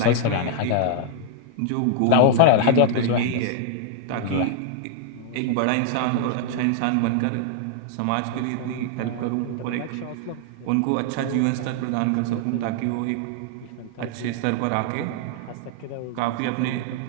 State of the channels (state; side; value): different; both; correlation -0.01